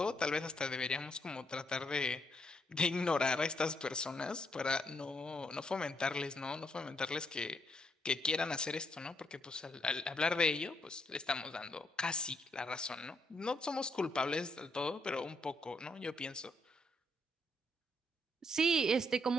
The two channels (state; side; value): normal; both; correlation 0.75